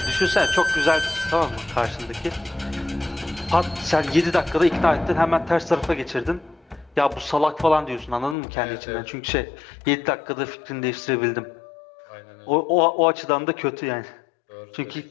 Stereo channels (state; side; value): drops out; right; at 8.3 s